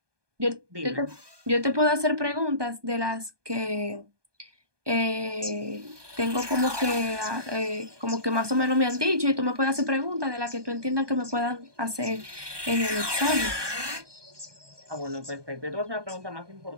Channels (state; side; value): late; left; 1.2 ms